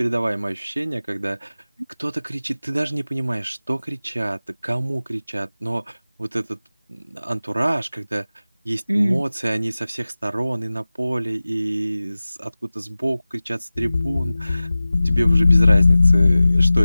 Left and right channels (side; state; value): both; inverted; correlation -0.97